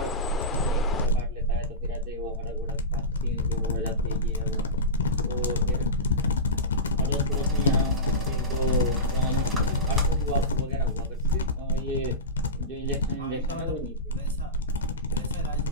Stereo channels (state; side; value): normal; both; correlation -0.19